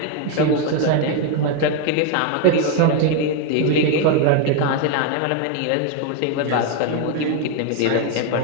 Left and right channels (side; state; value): both; different; correlation 0.01